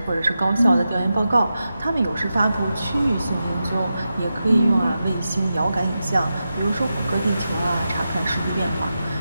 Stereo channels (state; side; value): inverted; both; correlation -0.90